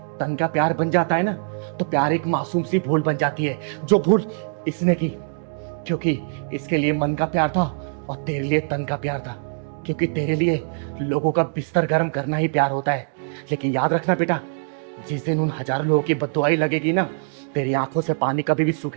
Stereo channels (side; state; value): left; silent; digital silence